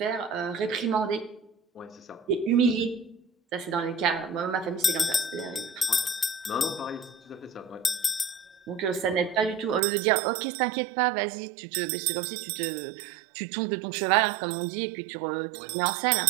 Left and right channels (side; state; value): left; drops out; at 9.8 s